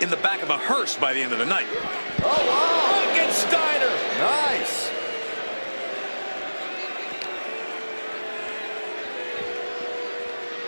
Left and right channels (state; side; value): inverted; both; correlation -1.00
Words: in the back of a hearse by the end of the night. Oh, wow. Look at Steiner. Nice.